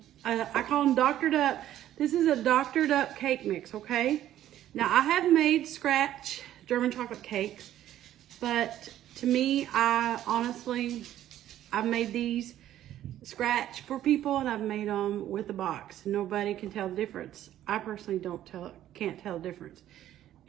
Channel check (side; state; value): left; quieter; 12.3 dB